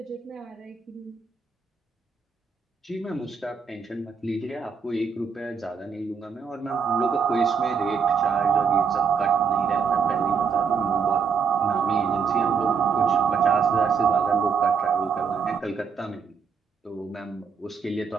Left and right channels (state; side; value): quieter; left; 6.1 dB